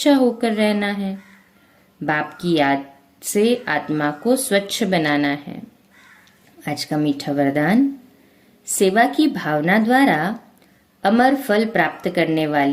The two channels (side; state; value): both; identical; correlation 1.00